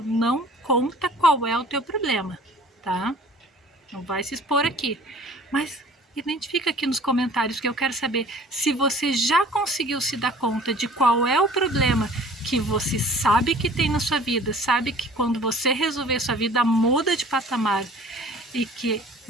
Não conta qual é o teu problema, tá? Não vai se expor aqui. Mas identifica aqui nos comentários, que eu quero saber se você já conseguiu se dar conta de qual é o problema que você sabe que tem na sua vida, sabe que quando você resolver sua vida muda de patamar e que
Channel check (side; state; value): both; normal; correlation 0.49